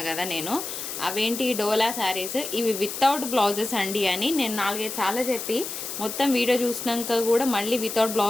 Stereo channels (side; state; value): left; noise; hiss, 7 dB below the sound